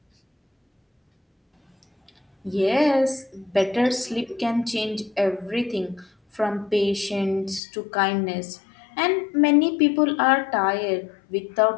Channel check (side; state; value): right; drops out; at 7.6 s